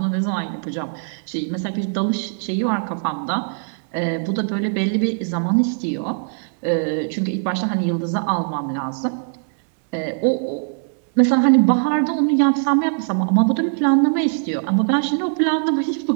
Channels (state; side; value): silent; left; digital silence